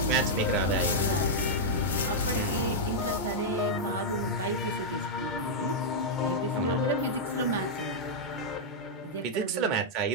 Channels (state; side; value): normal; both; correlation -0.05